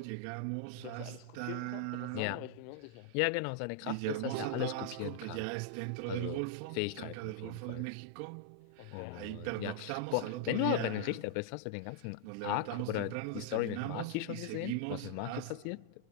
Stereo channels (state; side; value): different; both; correlation -0.01